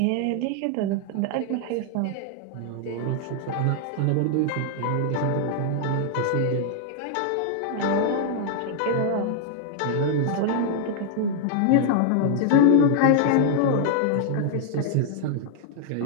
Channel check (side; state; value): both; different; correlation -0.01